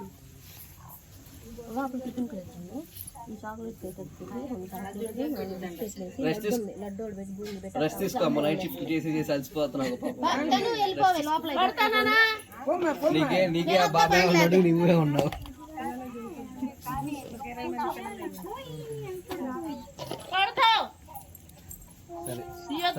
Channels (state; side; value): identical; both; correlation 1.00